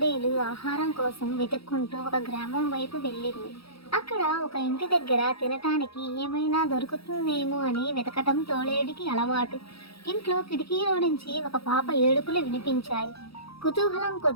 ఆహారం కోసం వెతుక్కుంటూ ఒక గ్రామం వైపు వెళ్ళింది. అక్కడ ఒక ఇంటి దగ్గర తినటానికి ఏమైనా దొరుకుతుందేమో అని వెతకటం తోడేలుకి అలవాటు. ఇంట్లో కిటికీలో నుంచి ఒక పాప ఏడుపులు వినిపించాయి. కుతూహలం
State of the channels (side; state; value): right; late; 0.76 ms